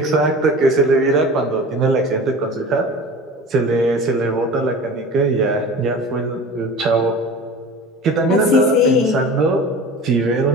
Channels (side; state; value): both; normal; correlation 0.37